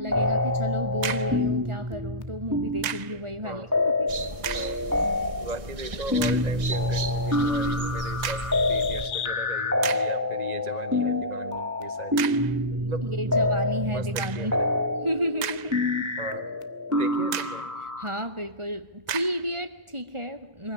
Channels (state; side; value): late; left; 1.9 ms